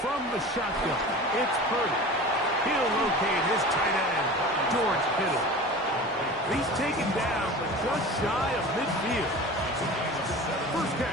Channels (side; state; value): both; normal; correlation 0.36